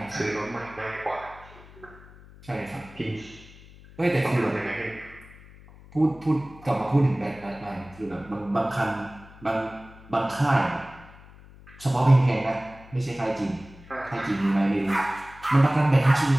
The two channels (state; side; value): noise; left; hum, 21 dB below the sound